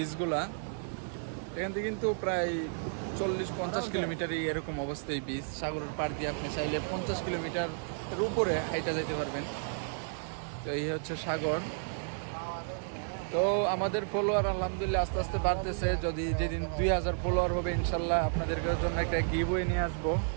এখান থেকে কিন্তু প্রায় 40-50 কিলোমিটারই এরকম অবস্থা। এই বীজ সাগরের পাড় দিয়ে আপনি চাইলে 50 কিলোমিটার উপরে হাইটা যেতে পারবেন। তো এই হচ্ছে সাগর। তো আমাদের ফলোয়ার আলহামদুলিল্লাহ আস্তে আস্তে বাড়তেছে। যদি যেদিন 2000 ফলোয়ার হবে ইনশাল্লাহ আপনাদের জন্য একটা গিভওয়ে নিয়ে আসবো।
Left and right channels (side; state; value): left; silent; digital silence